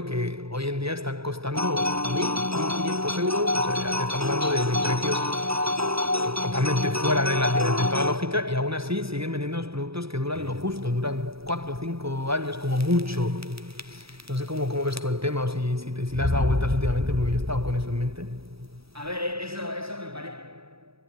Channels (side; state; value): left; late; 0.77 ms